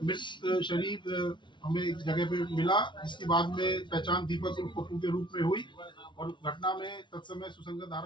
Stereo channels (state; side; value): late; right; 0.23 ms